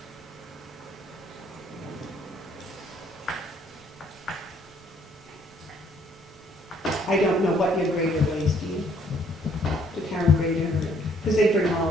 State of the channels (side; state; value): both; normal; correlation 0.64